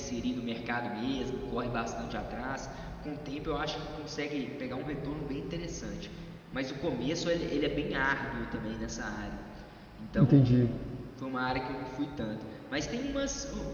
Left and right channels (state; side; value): identical; both; correlation 1.00